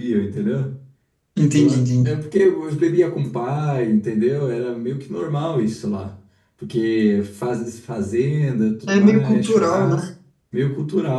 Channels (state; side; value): identical; both; correlation 1.00